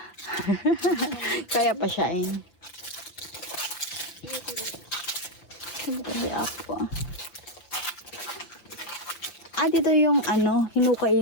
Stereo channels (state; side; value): late; right; 5.8 ms